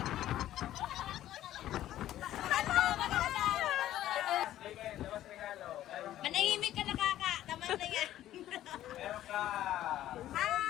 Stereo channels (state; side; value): quieter; right; 13.1 dB